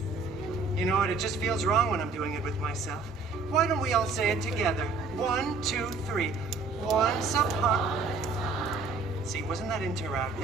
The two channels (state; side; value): quieter; left; 3.9 dB